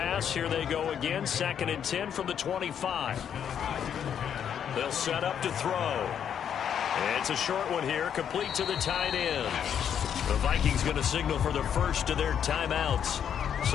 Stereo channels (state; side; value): quieter; right; 8.6 dB